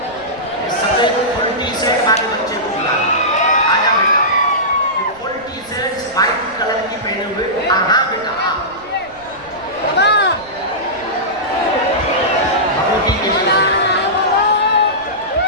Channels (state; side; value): noise; right; rumble, 25 dB below the sound